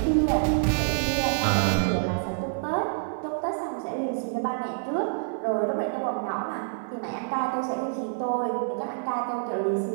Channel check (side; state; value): left; silent; 60 dB below the other